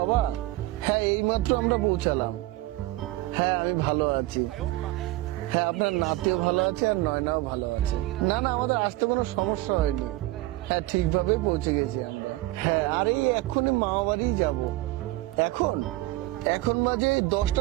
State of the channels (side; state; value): left; quieter; 18.5 dB